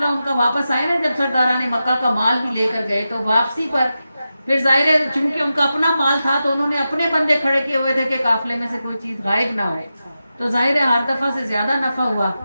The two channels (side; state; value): both; inverted; correlation -0.91